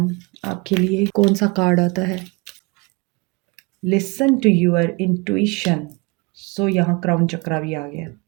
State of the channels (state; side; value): quieter; left; 28.1 dB